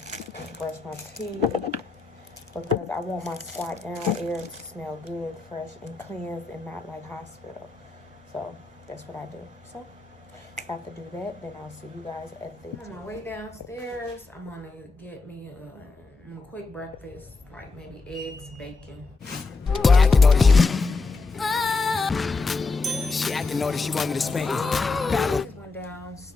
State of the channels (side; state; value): right; quieter; 4.0 dB